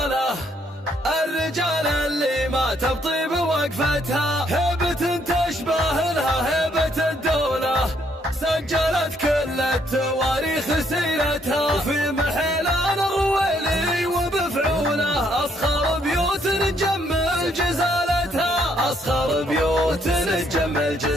الرجال اللي ما تبطي بوقفتها، هيبة تشبه لها هيبة الدولة، سجلت كل التواريخ سيرتها، وفي محلان الرويلي وبفعوله أصخر بيوت نجمل جزالتها، أصخر بيوت نجمل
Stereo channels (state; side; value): normal; both; correlation 0.70